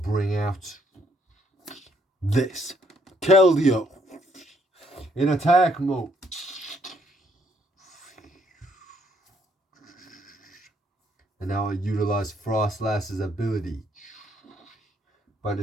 out this. Keldeo. In attack mode. And now I utilize Frostlass's ability by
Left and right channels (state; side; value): normal; both; correlation 0.70